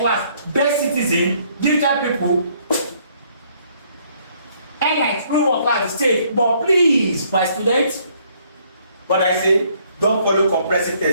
Best citizen, digital people, airlines rule what class? The state. But please, my students, what I say, don't follow comprehensive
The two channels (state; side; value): inverted; both; correlation -0.66